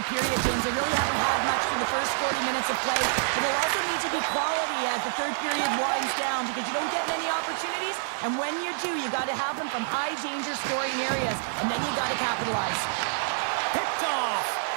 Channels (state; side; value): silent; left; 60 dB below the other